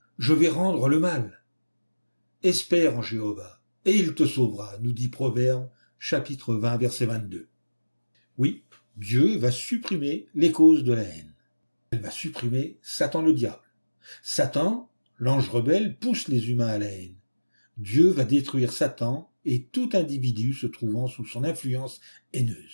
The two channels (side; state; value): both; inverted; correlation -1.00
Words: « je vais rendre le mal ». Espère en Jéhovah, et il te sauvera, nous dit Proverbe, chapitre 20, verset 22. Oui, Dieu va supprimer les causes de la haine. Elle va supprimer Satan le diable. Satan, l'ange rebelle, pousse les humains à la haine. Dieu va détruire Satan et tout individu se trouvant sous son influence